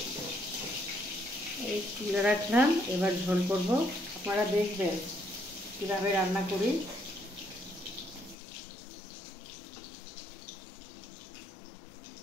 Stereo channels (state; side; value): drops out; right; at 8.3 s